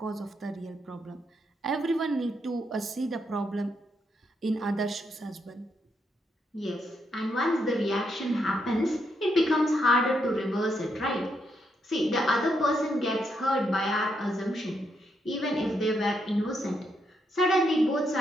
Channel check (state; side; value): normal; both; correlation 0.79